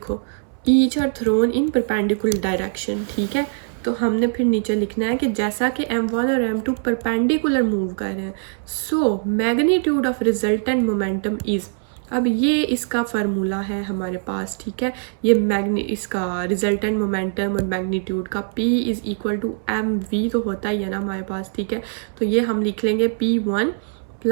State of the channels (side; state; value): left; silent; 64 dB below the other